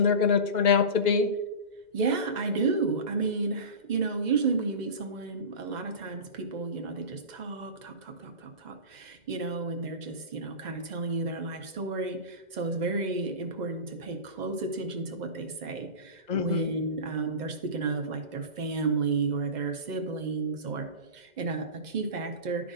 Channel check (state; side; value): late; left; 2.0 ms